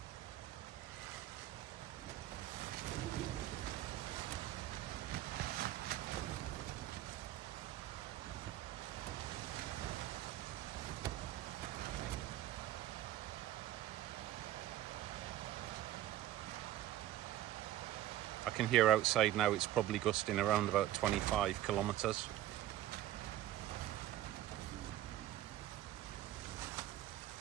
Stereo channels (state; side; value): quieter; left; 13.3 dB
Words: I can hear outside now it's probably gusting around about 25 kilometers.